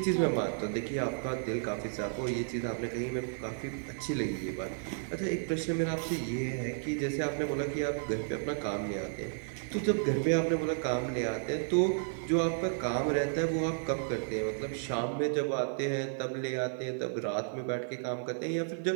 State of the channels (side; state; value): left; silent; 56 dB below the other